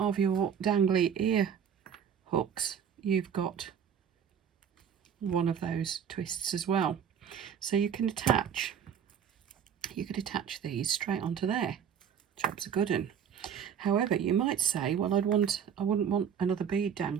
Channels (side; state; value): left; quieter; 8.0 dB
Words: your dangly ear hooks, you've got one of those twists as well. So you can attach these straight onto there. Job's a good un. However, you might say, well, I wouldn't want another bead